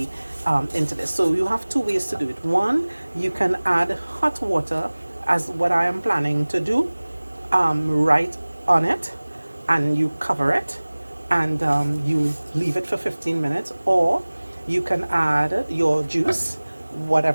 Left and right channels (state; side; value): inverted; both; correlation -1.00